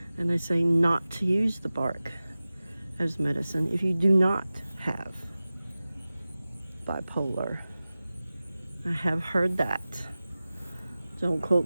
And they say not to use the bark as medicine if you do not have bipolar. I have heard that. Don't quote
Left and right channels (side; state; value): both; inverted; correlation -0.97